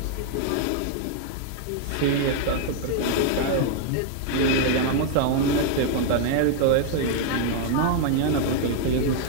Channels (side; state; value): both; different; correlation 0.00